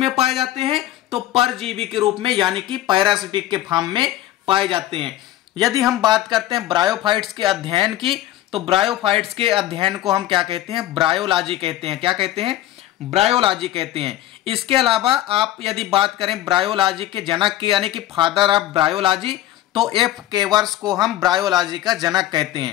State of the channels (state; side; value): quieter; right; 13.9 dB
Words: पाए जाते हैं, तो परजीवी के रूप में यानी कि पैरासिटिक के फॉर्म में पाए जाते हैं। यदि हम बात करते हैं ब्रायोफाइट्स के अध्ययन की, तो ब्रायोफाइट्स के अध्ययन को हम क्या कहते हैं, ब्रायोलॉजी कहते हैं। क्या कहते हैं, ब्रायोलॉजी कहते हैं। इसके अलावा आप यदि बात करें ब्रायोलॉजी के जनक की यानी कि फादर ऑफ ब्रायोलॉजी, तो F केवर्स को हम ब्रायोलॉजी का जनक कहते